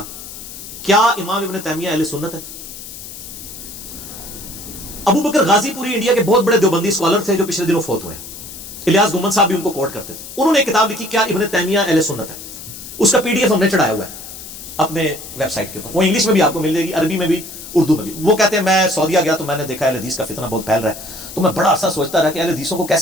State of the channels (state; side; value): noise; left; hiss, 13 dB below the sound